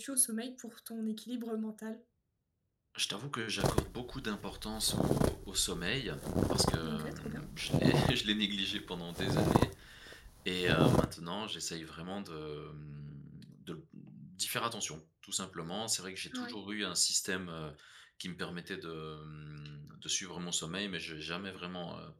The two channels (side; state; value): both; identical; correlation 1.00